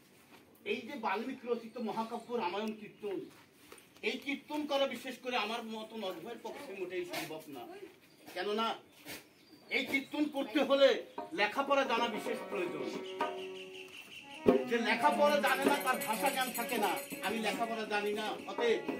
এই যে বাল্মীকি রচিত মহাকাব্য রামায়ণ কীর্তন, এই কীর্তন করা বিশেষ করে আমার মতন অধ্যয়ের পক্ষে মোটেই সম্ভব না। কেননা এই কীর্তন করতে হলে লেখাপড়া জানা বিশেষ প্রয়োজন। যে লেখাপড়া জানে না তার ভাষা জ্ঞান থাকে না। আমি লেখাপড়া জানি না, অতএব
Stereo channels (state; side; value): identical; both; correlation 1.00